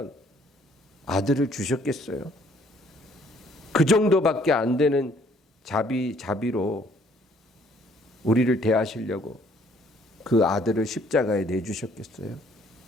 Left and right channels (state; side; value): normal; both; correlation 0.62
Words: 아들을 주셨겠어요? 그 정도밖에 안 되는 자비로 우리를 대하시려고 그 아들을 십자가에 내주셨겠어요?